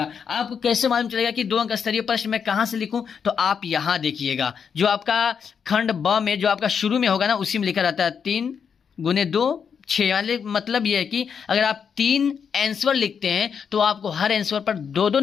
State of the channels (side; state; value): right; quieter; 6.8 dB